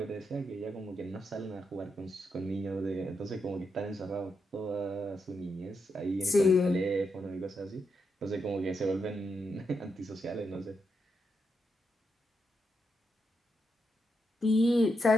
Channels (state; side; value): normal; both; correlation 0.83